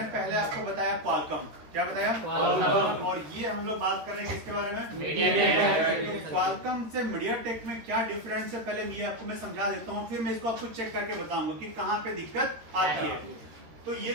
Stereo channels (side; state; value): left; late; 13 ms